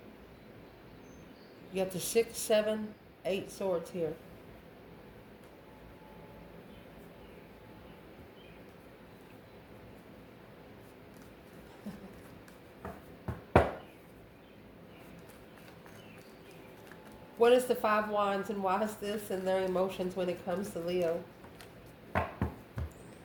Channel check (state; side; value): identical; both; correlation 1.00